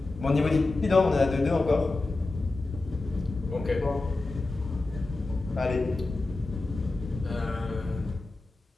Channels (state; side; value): quieter; right; 3.2 dB